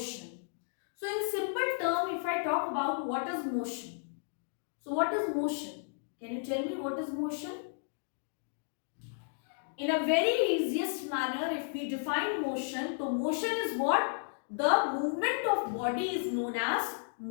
So, in simple term, if I talk about what is motion. So, what is motion? Can you tell me what is motion? In a very easiest manner, if we define motion, so motion is what? The movement of body is known as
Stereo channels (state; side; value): silent; right; digital silence